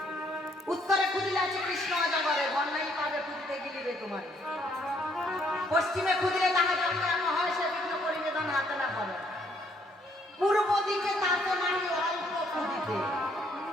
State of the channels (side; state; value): both; normal; correlation 0.67